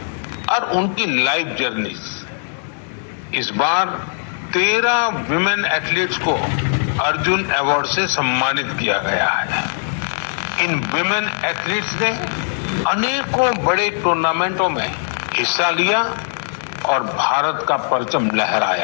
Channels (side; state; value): right; silent; digital silence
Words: और उनकी लाइफ जर्नीज। इस बार 13 विमेन एथलीट्स को अर्जुन अवार्ड से सम्मानित किया गया है। इन विमेन एथलीट्स ने अनेकों बड़े टूर्नामेंटों में हिस्सा लिया और भारत का परचम